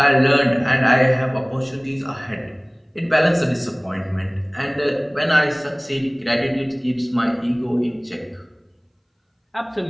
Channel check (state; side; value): identical; both; correlation 1.00